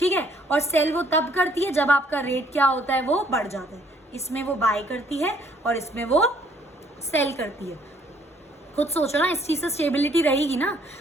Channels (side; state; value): both; normal; correlation 0.64